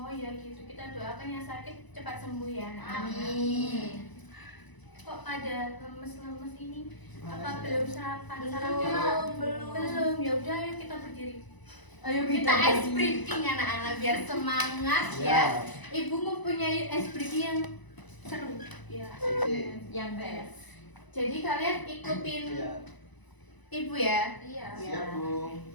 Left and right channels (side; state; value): right; late; 1.0 ms